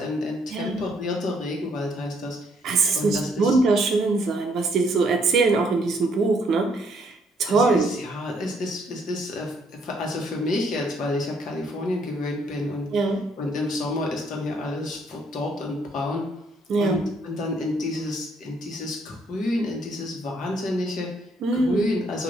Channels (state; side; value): normal; both; correlation 0.68